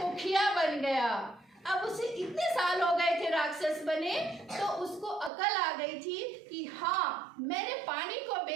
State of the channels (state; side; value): drops out; left; at 5.3 s